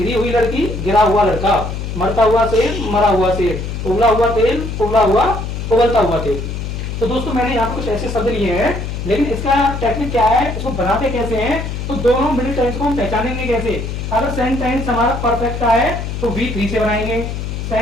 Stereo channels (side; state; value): left; noise; hum, 5 dB below the sound